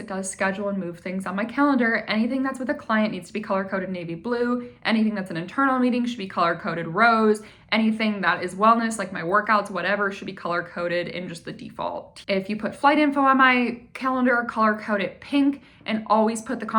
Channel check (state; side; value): identical; both; correlation 1.00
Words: does schedule and move things on my calendar, anything that's with a client needs to be color-coded navy blue. Anything that's an internal meeting should be color-coded rose. Anything that is wellness, like my workouts, whatever, should be color-coded in just the default. If you put flight info on my calendar, color-code it pink, and always put the